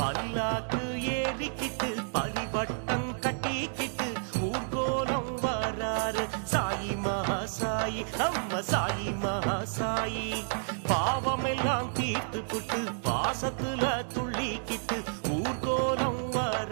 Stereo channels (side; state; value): left; silent; digital silence